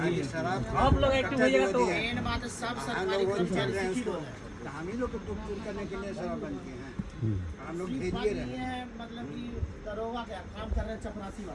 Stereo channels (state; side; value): identical; both; correlation 1.00